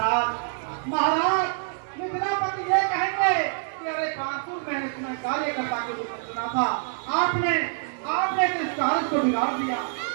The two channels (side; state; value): left; silent; 61 dB below the other